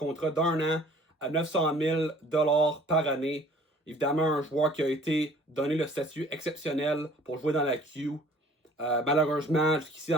d'un an à 900 000 par année. Évidemment, un joueur qui a été donné le statut exceptionnel pour jouer dans la Q. Malheureusement, jusqu'ici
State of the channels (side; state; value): both; normal; correlation 0.53